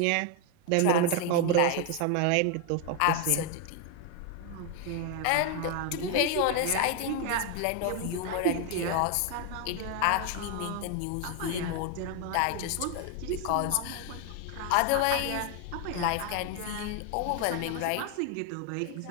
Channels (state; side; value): different; both; correlation 0.01